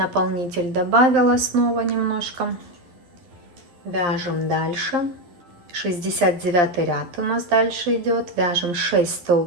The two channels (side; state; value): left; late; 11 ms